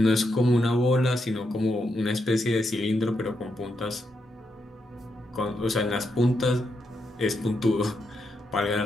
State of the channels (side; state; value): both; normal; correlation 0.82